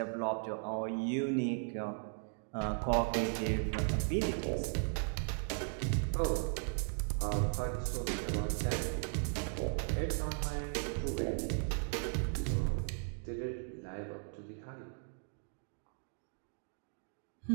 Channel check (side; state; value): left; silent; 53 dB below the other